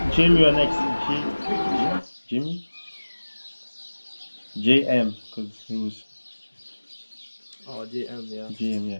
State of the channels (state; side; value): inverted; both; correlation -1.00